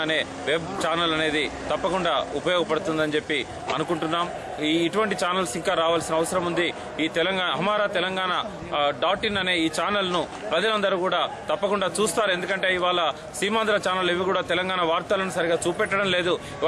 అనే వెబ్ ఛానల్ అనేది తప్పకుండా ఉపయోగపడుతుందని చెప్పి అనుకుంటున్నాం. ఇటువంటి ఛానల్స్ ఇంకా రావాల్సిన అవసరం ఉంది. ఈ హమారా తెలంగాణ .in అనే ఈ ఛానల్ ను ప్రజలందరూ కూడా తప్పకుండా చూస్తారు. ఎందుకంటే ఇవాళ సీమాంధ్ర ఛానల్ ఇవి కూడా తెలంగాణ వార్తలను సరిగా చూపెట్టడం లేదు.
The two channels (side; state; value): both; identical; correlation 1.00